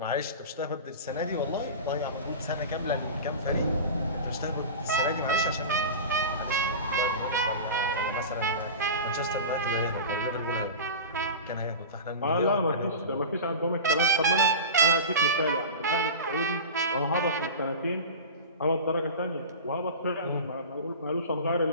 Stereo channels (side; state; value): both; inverted; correlation -0.31